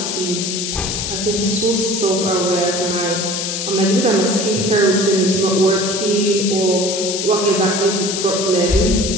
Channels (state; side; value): noise; left; hiss, 3 dB below the sound